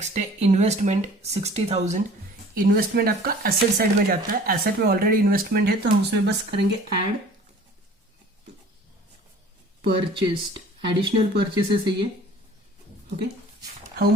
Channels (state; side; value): normal; both; correlation 0.47